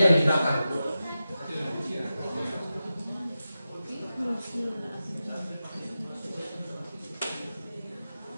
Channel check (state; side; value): inverted; both; correlation -0.92